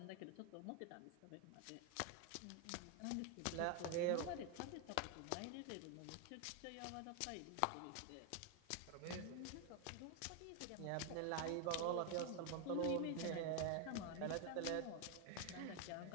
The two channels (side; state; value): both; different; correlation 0.01